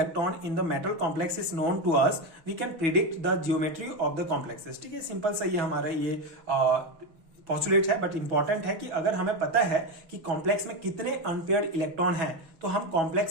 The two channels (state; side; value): late; left; 6.1 ms